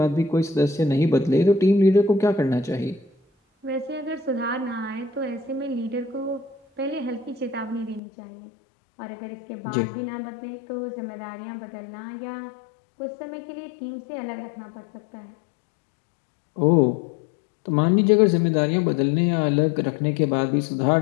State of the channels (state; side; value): drops out; right; at 8.0 s